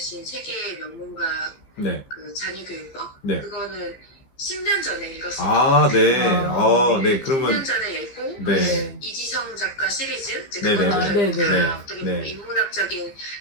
세계 명문가 네. 그 자녀 교육법 네. 그거는 10년 전에 읽었어요. 아, 네. 네. 10년 그러면 전에 읽고 네. 이지성 작가 시리즈 이제 네네네. 그거를 네네. 어떻게 네. 보면 인문학적인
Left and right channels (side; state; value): right; late; 15 ms